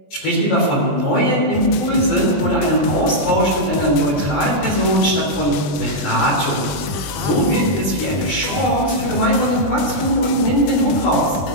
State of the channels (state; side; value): late; right; 20 ms